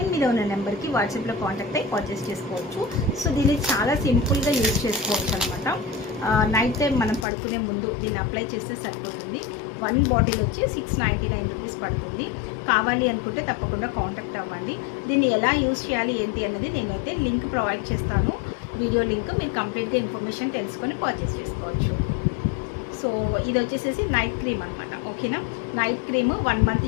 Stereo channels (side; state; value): right; drops out; at 7.2 s